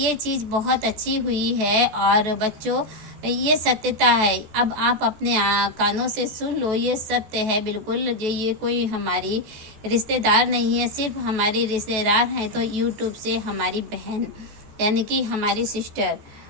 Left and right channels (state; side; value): late; left; 14 ms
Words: चीज़ बहुत अच्छी हुई है। और बच्चों ये सत्यता है, अब आप अपने कानों से सुन लो, ये सत्य है बिल्कुल। ये कोई हमारी रिश्तेदार नहीं है, सिर्फ हमारी रिश्तेदार हैं तो यूट्यूब से हमारी बहन, यानी कि हमारी सिस्टर,